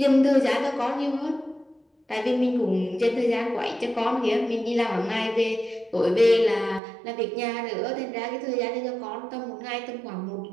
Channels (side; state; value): left; drops out; at 6.8 s